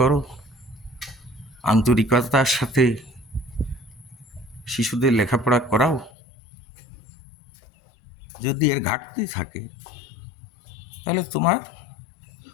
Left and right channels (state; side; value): drops out; right; at 6.1 s